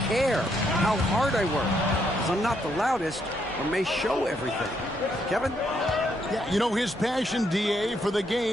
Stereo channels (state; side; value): normal; both; correlation 0.75